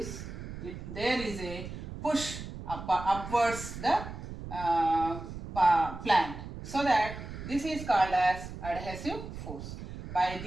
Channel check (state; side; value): noise; right; rumble, 10 dB below the sound